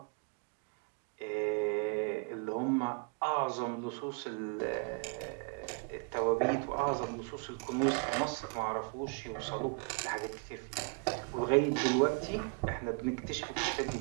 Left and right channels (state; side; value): quieter; left; 37.9 dB